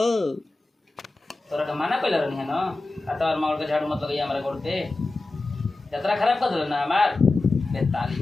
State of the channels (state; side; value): quieter; right; 3.1 dB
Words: तोरा के माना पहले रहनी है ना आतार मार के झाड़ू मत लगाइए हमारे गोड़ पे। यात्रा खराब कर दिल ना हमार बेताली